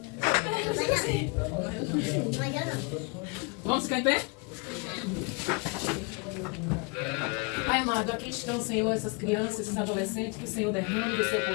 Vamos ficar em pé? Pai amado, aqui estão, Senhor, essas crianças, esses adolescentes, que o Senhor derrame do seu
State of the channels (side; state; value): right; quieter; 31.9 dB